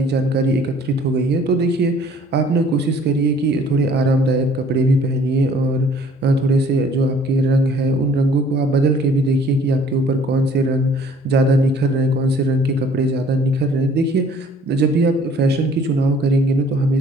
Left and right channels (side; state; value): both; normal; correlation 0.56